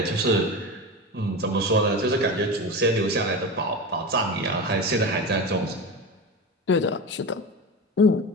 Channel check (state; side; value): normal; both; correlation 0.24